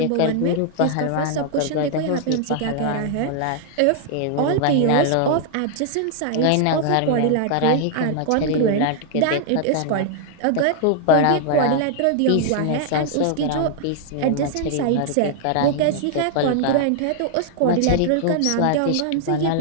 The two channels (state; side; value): different; both; correlation 0.00